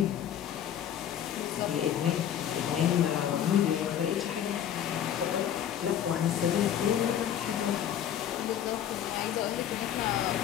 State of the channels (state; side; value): quieter; right; 10.0 dB